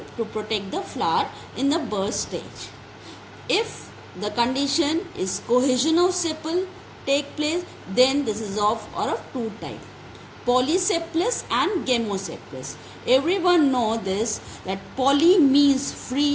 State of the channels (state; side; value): identical; both; correlation 1.00